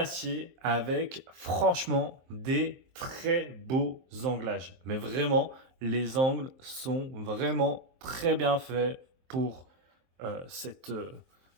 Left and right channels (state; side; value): late; left; 23 ms